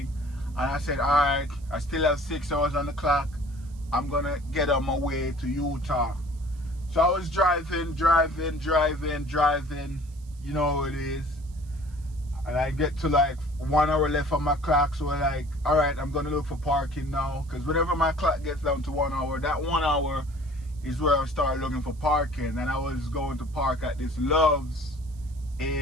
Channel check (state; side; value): noise; right; hiss, 28 dB below the sound